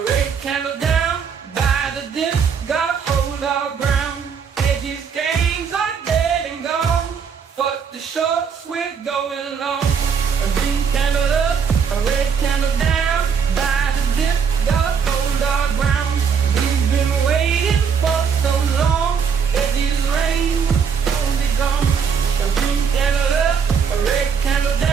red candle down by the dip, gotta hold our ground. Hedges gains are dead and gone, but the shorts we're going long.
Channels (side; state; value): left; quieter; 6.6 dB